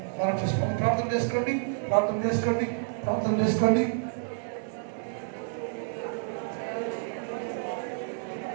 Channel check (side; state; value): left; silent; digital silence